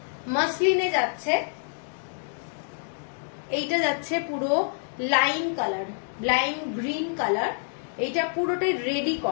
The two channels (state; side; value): silent; right; digital silence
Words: মসলিনে যাচ্ছে। এইটা যাচ্ছে পুরো lime colour, lime green colour. এইটা পুরোটাই রেডি